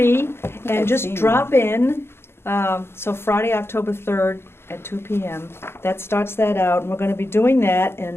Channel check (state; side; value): late; right; 0.12 ms